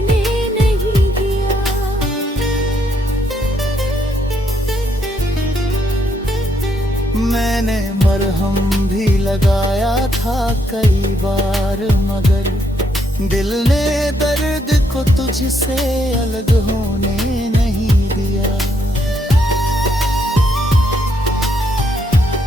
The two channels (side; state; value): both; normal; correlation 0.74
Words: नहीं दिया। मैंने मरहम भी लगाया था कई बार, मगर दिल ने दर्द को तुझसे अलग होने नहीं दिया।